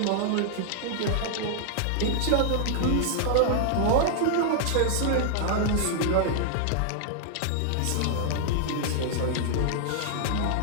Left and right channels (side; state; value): both; different; correlation -0.01